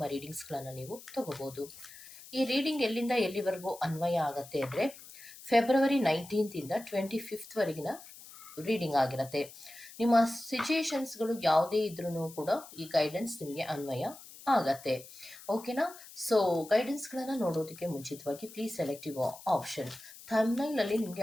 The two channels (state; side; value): noise; left; hiss, 17 dB below the sound